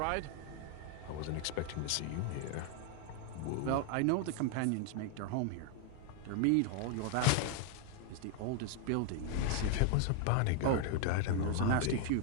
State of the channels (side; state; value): both; different; correlation 0.00